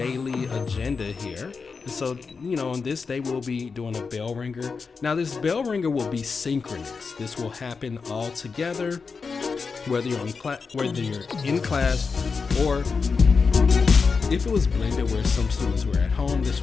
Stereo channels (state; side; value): quieter; right; 5.0 dB